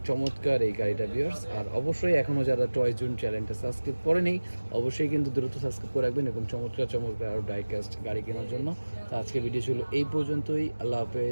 চমৎকার এই গাড়িটা ভিউয়ার্স। আর অবশ্যই এখনও যারা টয় জোন চ্যানেলটা সাবস্ক্রাইব করেনি অবশ্যই কিন্তু দ্রুত সাবস্ক্রাইব করে রাখবেন এবং চমৎকার চমৎকার আরও ডাইকাস্ট গাড়ি কেনার জন্য। তো আজকে ভিডিও ছিল এই পর্যন্তই, আল্লাহ হাফেজ,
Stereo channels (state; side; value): inverted; both; correlation -1.00